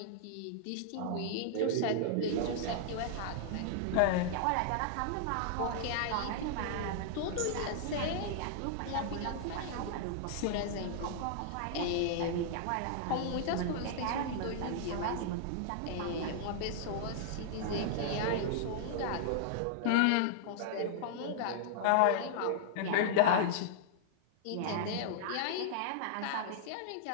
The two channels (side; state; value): both; different; correlation -0.01